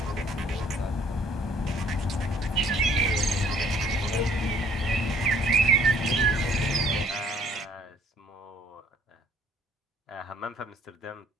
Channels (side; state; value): both; normal; correlation 0.60